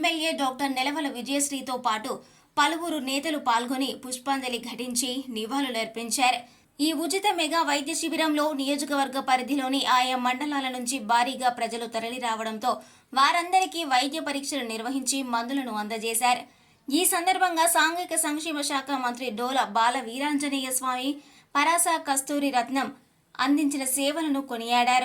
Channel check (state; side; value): identical; both; correlation 1.00